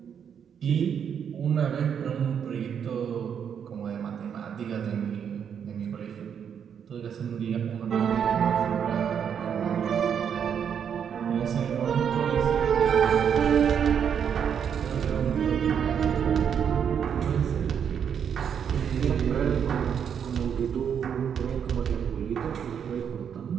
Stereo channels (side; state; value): left; quieter; 7.9 dB